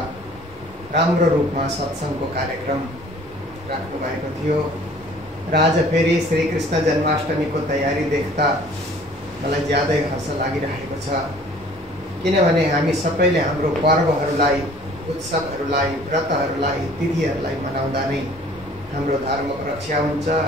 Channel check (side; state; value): both; normal; correlation 0.52